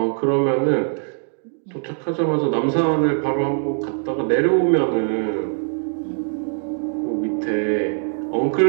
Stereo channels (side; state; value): left; silent; 62 dB below the other